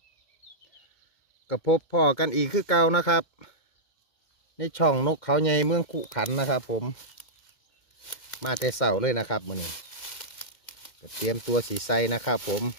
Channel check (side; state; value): right; late; 2.1 ms